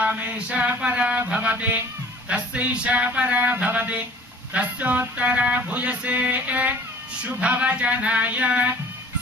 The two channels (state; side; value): normal; both; correlation 0.48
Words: परा भवति तस्यैषा परा भवति तस्योत्तरा भूयसे शुभवचनाय